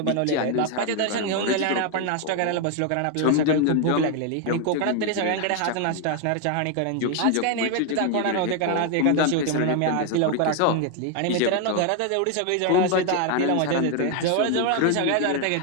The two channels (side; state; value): both; different; correlation 0.01